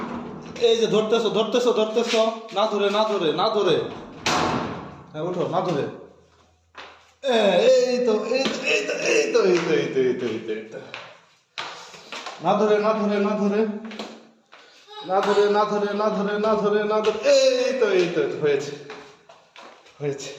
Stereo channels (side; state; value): both; identical; correlation 1.00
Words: এই যে ধরতেছো ধরতেছো ধরতেছো, না ধরে না ধরে না ধরে। হ্যাঁ ওঠো, না ধরে। এই তো এই তো এই তো এই তো এই তো এই তো এই তো এই তো এই তো। না ধরে না ধরে না ধরে না ধরে না ধরে না ধরে না ধরে না ধরে। এই তো এই তো হয়েছে হয়েছে।